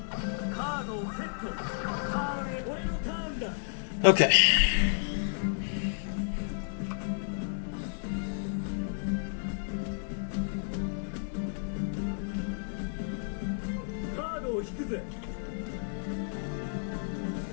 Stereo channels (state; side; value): silent; right; digital silence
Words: カードをセット。ターンへ俺のターンだ。 Okay. カードを引くぜ。